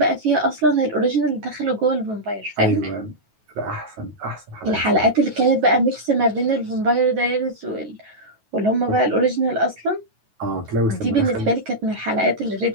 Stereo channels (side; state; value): left; late; 9.3 ms